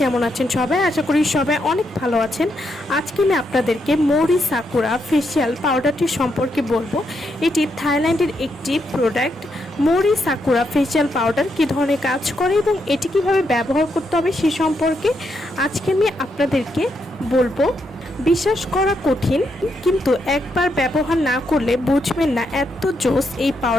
আছেন সবাই? আশা করি সবাই অনেক ভালো আছেন। আজকে আমি আপনাদেরকে মোরি সাকুরা ফেসিয়াল পাউডারটি সম্পর্কে বলবো। এটি থাইল্যান্ডের একটি প্রোডাক্ট। মোরি সাকুরা ফেসিয়াল পাউডার কী ধরনের কাজ করে এবং এটি কিভাবে ব্যবহার করতে হবে সে সম্পর্কে আজকে আমি আপনাদেরকে বলবো। বিশ্বাস করা কঠিন, কিন্তু একবার ব্যবহার না করলে বুঝবেন না এত জোস এই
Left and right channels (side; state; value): both; normal; correlation 0.80